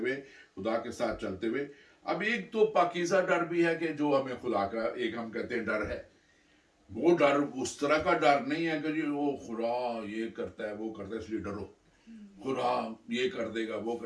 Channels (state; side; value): identical; both; correlation 1.00